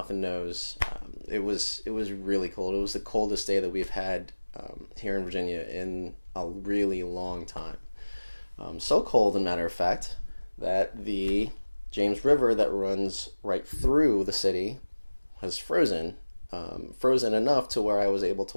and nose. It was really cold. It was the coldest day that we've had here in Virginia in a really long time. So cold, as a matter of fact, that the James River that runs right through the city has frozen enough to where I was able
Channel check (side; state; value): both; inverted; correlation -1.00